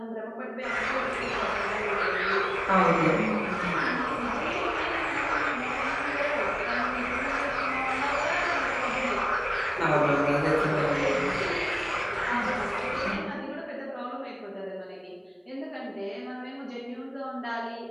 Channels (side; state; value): both; identical; correlation 1.00